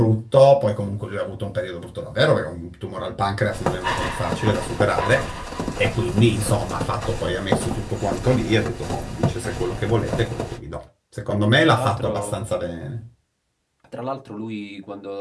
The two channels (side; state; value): both; identical; correlation 1.00